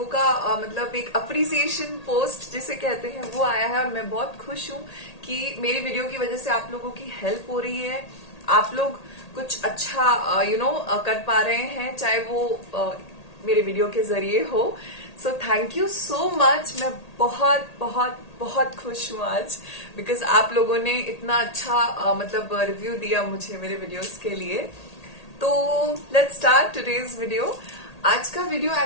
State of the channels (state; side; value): late; right; 1.8 ms